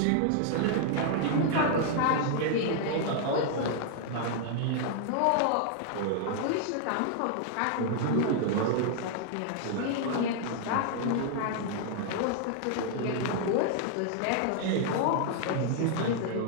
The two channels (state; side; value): different; both; correlation 0.00